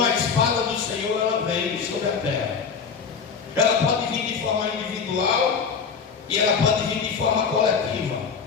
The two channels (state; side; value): quieter; right; 5.9 dB